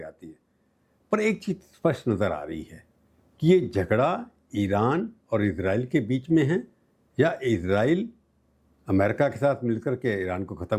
है। पर एक चीज़ स्पष्ट नज़र आ रही है कि ये झगड़ा ईरान और इजराइल के बीच में है, या इजराइल अमेरिका के साथ मिलकर के ईरान को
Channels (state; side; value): identical; both; correlation 1.00